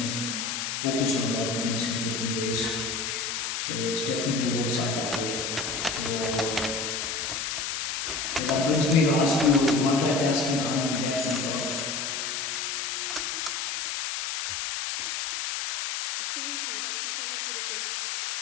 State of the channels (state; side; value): noise; left; hiss, 2 dB below the sound